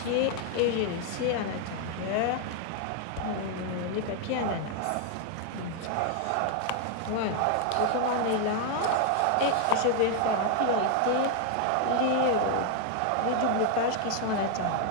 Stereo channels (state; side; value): different; both; correlation 0.00